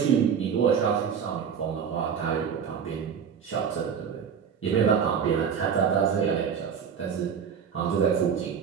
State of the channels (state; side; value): quieter; left; 7.2 dB